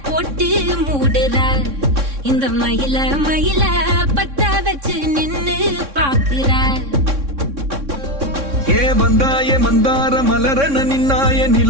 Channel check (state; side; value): late; left; 3.6 ms